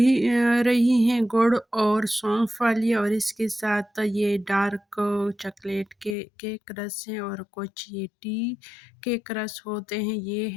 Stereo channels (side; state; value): right; drops out; at 6.2 s